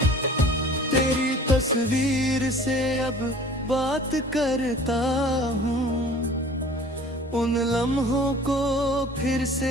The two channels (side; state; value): both; normal; correlation 0.47